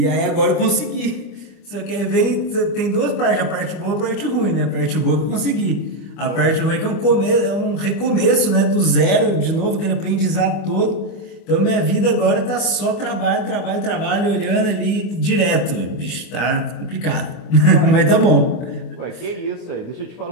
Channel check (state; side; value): late; right; 24 ms